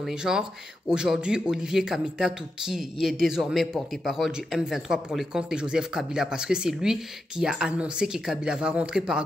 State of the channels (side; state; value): both; normal; correlation 0.87